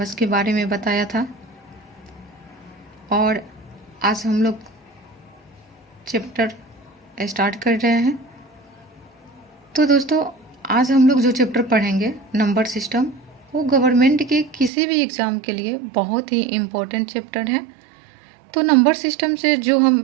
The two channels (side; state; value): left; drops out; at 14.7 s